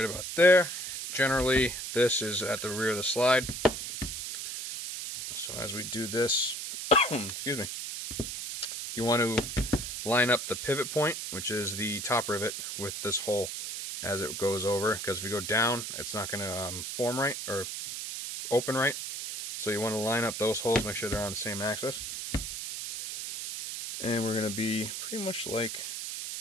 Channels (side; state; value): right; noise; hiss, 6 dB below the sound